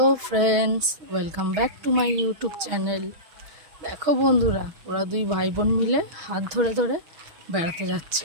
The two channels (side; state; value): left; late; 6.3 ms